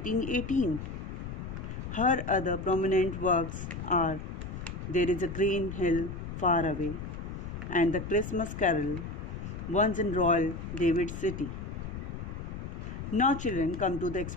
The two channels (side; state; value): left; noise; rumble, 7 dB below the sound